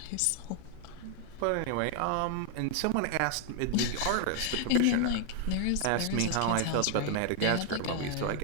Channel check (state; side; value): different; both; correlation 0.00